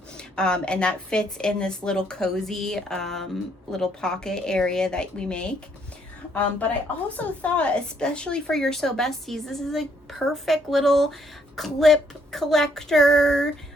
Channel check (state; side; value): normal; both; correlation 0.69